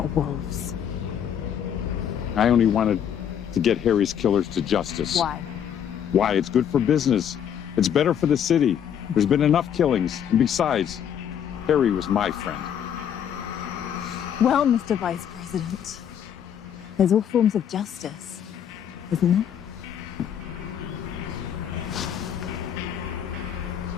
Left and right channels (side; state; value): right; quieter; 9.0 dB